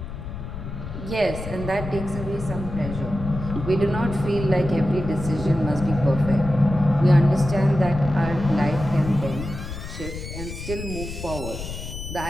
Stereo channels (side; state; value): left; noise; rumble, 9 dB below the sound